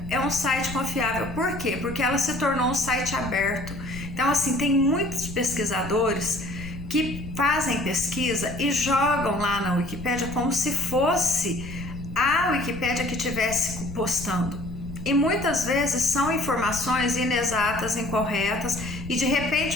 é um site confiável. Por quê? Porque ela se tornou um site aberto. Então, assim, tem muitos pesquisadores que fazem pesquisa e jogam lá na Wikipédia como se fosse a Wikipédia que estivesse postando. E muitas vezes são informações inexatas, incorretas, e de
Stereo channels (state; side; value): noise; left; rumble, 11 dB below the sound